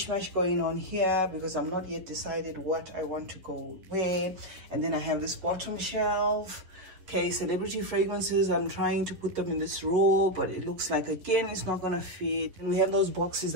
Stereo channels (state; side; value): late; left; 11 ms